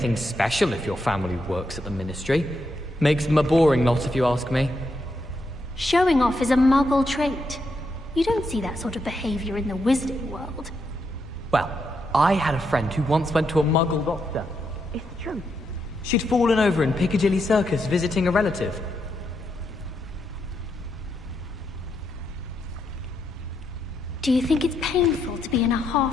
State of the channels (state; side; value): normal; both; correlation 0.81